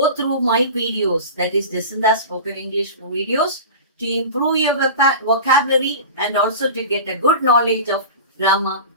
through my videos, that is Jacinda Spoken English videos, to improve your vocabulary and also to get a good knowledge of grammar,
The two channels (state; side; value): inverted; both; correlation -0.32